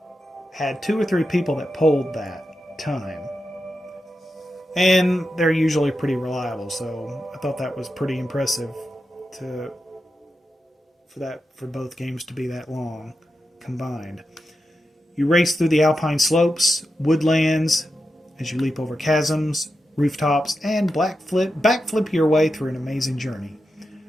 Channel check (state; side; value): normal; both; correlation 0.89